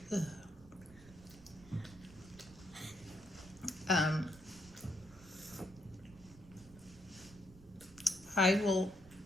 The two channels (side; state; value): right; noise; rumble, 21 dB below the sound